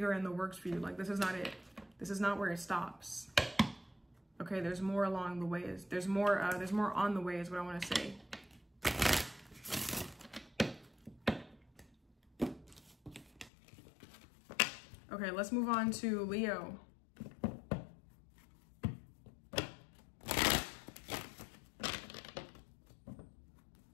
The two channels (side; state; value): right; drops out; at 13.5 s